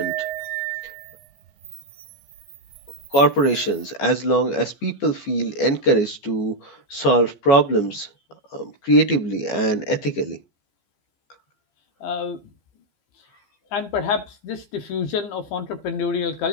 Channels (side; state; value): right; late; 14 ms